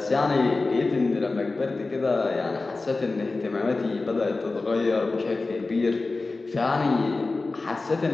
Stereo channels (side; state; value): right; quieter; 3.5 dB